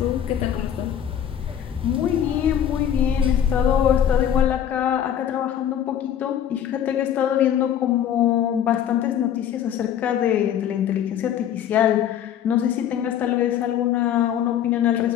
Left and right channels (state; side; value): quieter; right; 9.8 dB